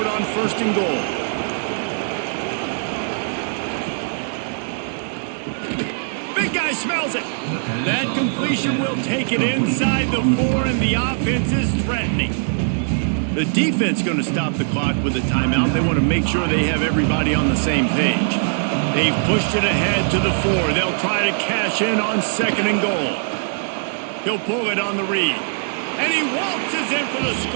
on 1st and goal. Big guy smells it. That completion will take it inside the 4, and the offense is threatening. The defense going to stop the clock with a timeout. They want to make sure they have everybody on the same page. They've pushed it ahead to the 4. They'll try to cash in on 2nd and goal. He'll pull it on the read. And he waltzes in for the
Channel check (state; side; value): silent; left; digital silence